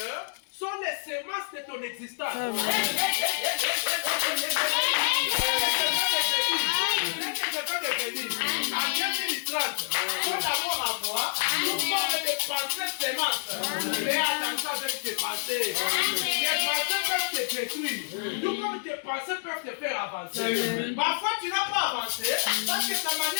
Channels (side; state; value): right; silent; digital silence